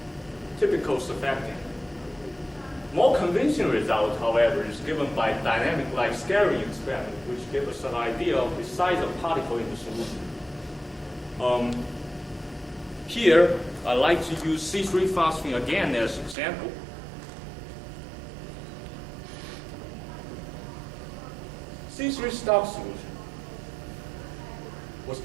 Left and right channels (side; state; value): left; drops out; at 16.4 s